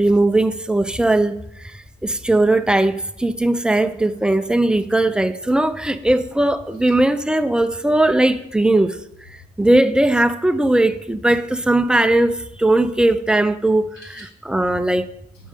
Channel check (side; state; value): both; normal; correlation 0.93